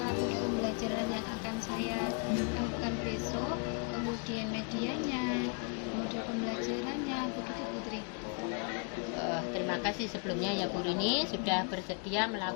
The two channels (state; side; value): quieter; right; 37.6 dB